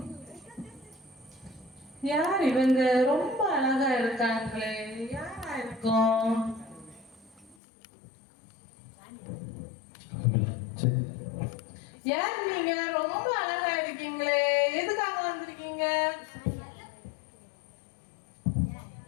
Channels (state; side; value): drops out; right; at 7.6 s